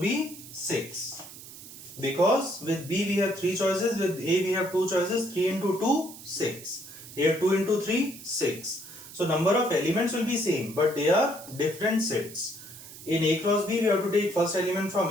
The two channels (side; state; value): right; noise; hiss, 15 dB below the sound